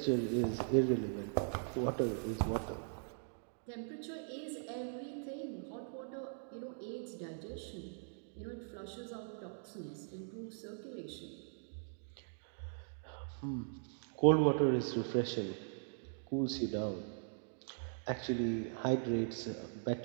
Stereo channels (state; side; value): silent; left; digital silence